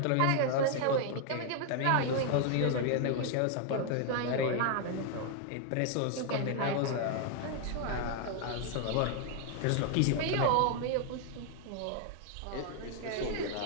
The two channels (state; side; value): different; both; correlation 0.00